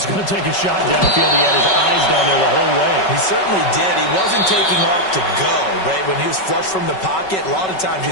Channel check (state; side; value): late; right; 5.3 ms